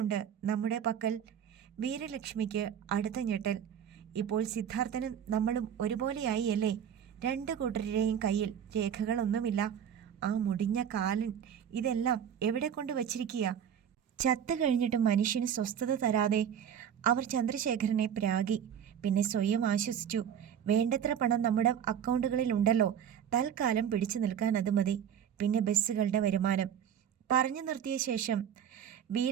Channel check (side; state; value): left; quieter; 8.8 dB